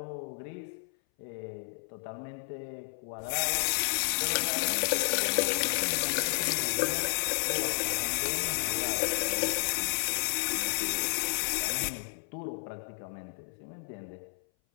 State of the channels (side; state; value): right; silent; 57 dB below the other